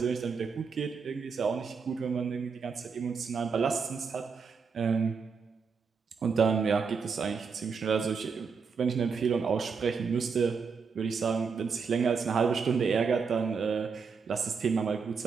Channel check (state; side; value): quieter; left; 5.6 dB